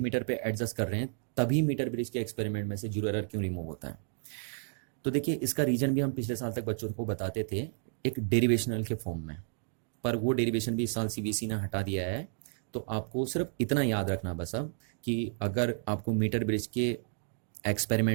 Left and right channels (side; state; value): left; silent; digital silence